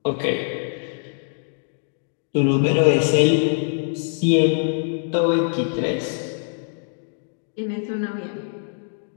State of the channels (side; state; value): right; silent; 60 dB below the other